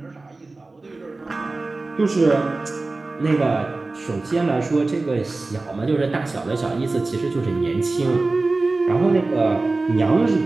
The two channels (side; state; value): left; quieter; 3.4 dB